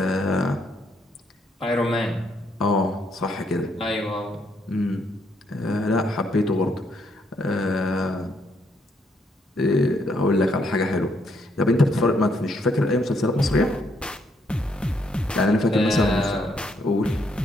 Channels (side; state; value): both; normal; correlation 0.73